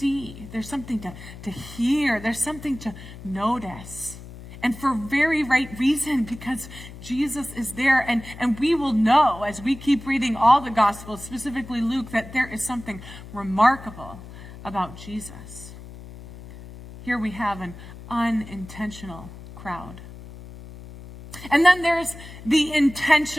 There's something to hear. There's something to notice. And for very right reason, because Jesus is there. And we will know as we keep reading all the Gospels, specifically Luke, that there is something remarkable about Jesus. Here we have an unintentional crowd. And then there's the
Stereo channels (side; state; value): left; noise; hum, 15 dB below the sound